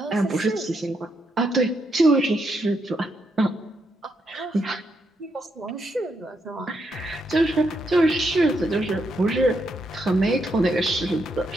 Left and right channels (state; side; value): normal; both; correlation 0.79